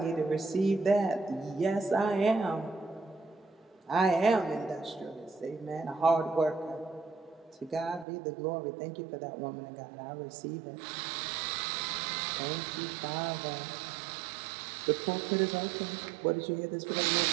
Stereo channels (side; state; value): left; drops out; at 8.1 s